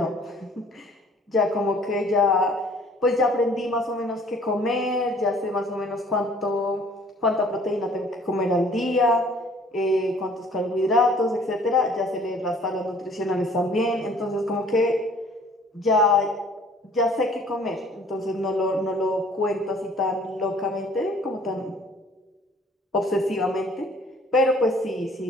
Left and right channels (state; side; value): normal; both; correlation 0.55